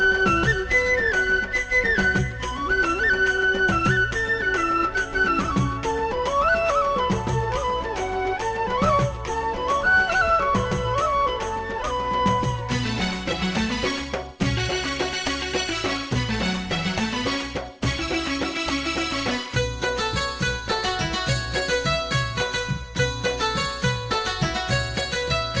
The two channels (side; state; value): both; identical; correlation 1.00